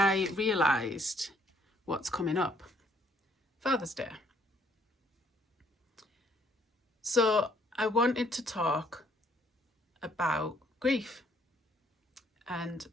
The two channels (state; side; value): normal; both; correlation 0.66